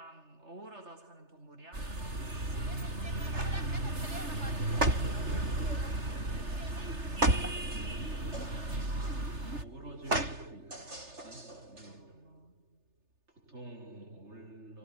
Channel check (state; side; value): late; left; 3.3 ms